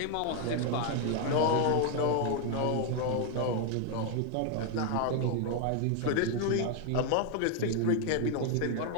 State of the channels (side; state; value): both; different; correlation 0.01